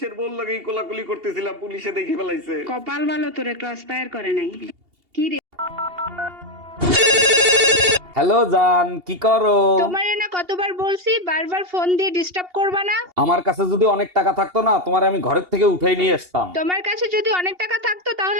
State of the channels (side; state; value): left; late; 2.8 ms